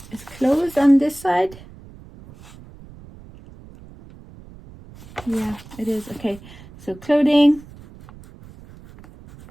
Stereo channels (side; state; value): right; noise; rumble, 20 dB below the sound